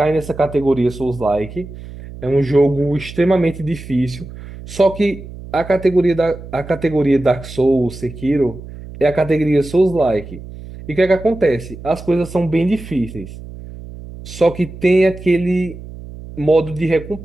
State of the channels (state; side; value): noise; right; hum, 14 dB below the sound